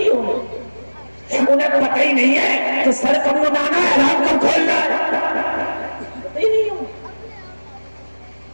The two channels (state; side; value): inverted; both; correlation -1.00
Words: ہوگا. انہیں پتہ ہی نہیں ہے کہ سر کب منانا ہے، احرام کب کھولنا ہے، پتہ ہی نہیں ہوگا.